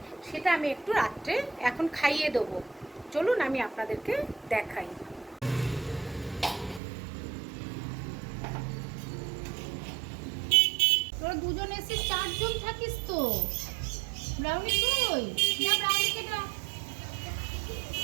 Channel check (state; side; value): drops out; left; at 6.8 s